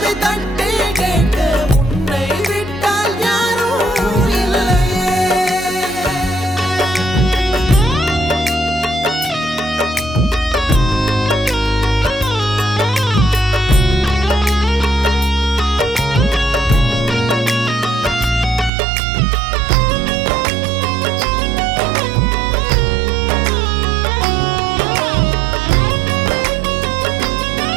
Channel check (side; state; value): left; drops out; at 18.7 s